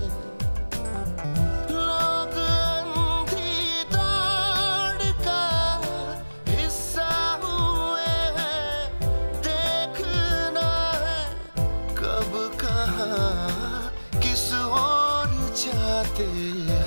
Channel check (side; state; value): both; inverted; correlation -1.00